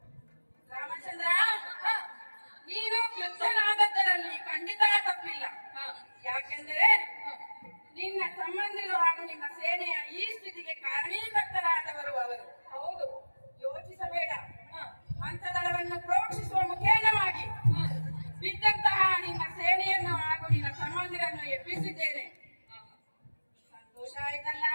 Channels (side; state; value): both; inverted; correlation -1.00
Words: ರಾಮಚಂದ್ರ, ನೀನು ಕ್ರುದ್ಧನಾದದ್ದರಲ್ಲಿ ಖಂಡಿತ ತಪ್ಪಿಲ್ಲ. ಯಾಕೆಂದರೆ ನಿನ್ನ ಸಂಬಂಧಿಗಳು ಹಾಗೂ ನಿನ್ನ ಸೇನೆಯ ಈ ಸ್ಥಿತಿಗೆ ಕಾರಣೀಕರ್ತರಾದವರು ಅವರು. ಹೌದು. ಯೋಚಿಸಬೇಡ. ಮಂತ್ರದಳವನ್ನು ಪ್ರೋಕ್ಷಿಸುವ ಮುಖೇನವಾಗಿ ಬಿದ್ದಂತಹ ನಿನ್ನ ಸೇನೆಯನ್ನು ಹಾಗೂ ನಿನ್ನ ಸಂಬಂಧಿರನ್ನು ಎಬ್ಬಿಸಿದ್ದೇನೆ. ಸಂತೋಷ ಆಯ್ತಲ್ಲ?